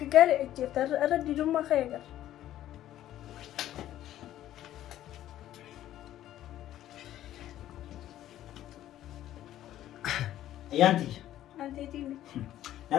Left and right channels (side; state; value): right; quieter; 12.8 dB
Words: جفت أرد ديرما خير Ayyaanti. أنت تيجي